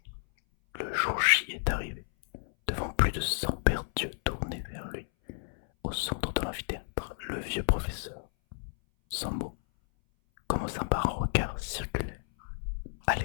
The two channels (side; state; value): right; silent; 57 dB below the other